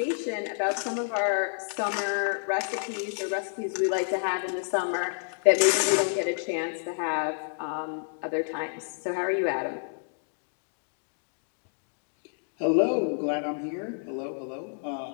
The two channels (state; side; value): silent; right; digital silence